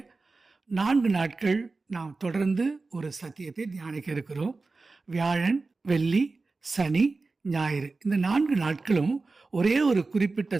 4 நாட்கள் நாம் தொடர்ந்து ஒரு சத்தியத்தை தியானிக்க இருக்கிறோம். வியாழன், வெள்ளி, சனி, ஞாயிறு இந்த 4 நாட்களும் ஒரே ஒரு குறிப்பிட்ட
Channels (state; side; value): quieter; left; 3.8 dB